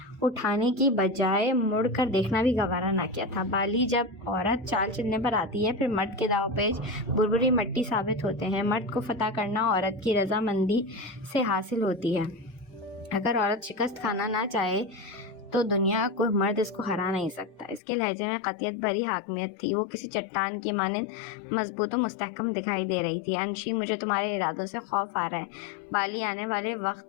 اٹھانے کی بجائے مڑ کر دیکھنا بھی گوارا نہ کیا تھا۔ بالی جب عورت چال چلنے پر آتی ہے پھر مرد کے داؤ پیچ بربری مٹی ثابت ہوتے ہیں۔ مرد کو فتح کرنا عورت کی رضامندی سے حاصل ہوتی ہے۔ اگر عورت شکست کھانا نہ چاہے تو دنیا کوئی مرد اس کو ہرا نہیں سکتا۔ اس کے لہجے میں قطعیت بھری حاکمیت تھی، وہ کسی چٹان کی مانند مضبوط و مستحکم دکھائی دے رہی تھی۔ انشی، مجھے تمہارے ارادوں سے خوف آ رہا ہے۔ بالی آنے والے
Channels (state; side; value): drops out; right; at 17.8 s